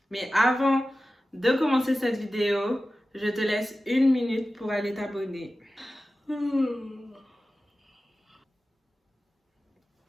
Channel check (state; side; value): normal; both; correlation 0.95